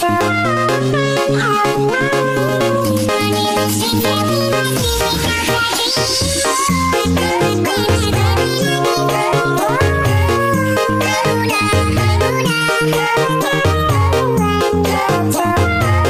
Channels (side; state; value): both; identical; correlation 1.00